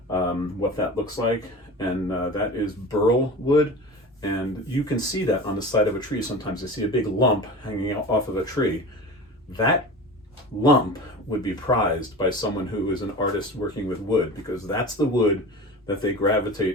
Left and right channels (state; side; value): normal; both; correlation 0.33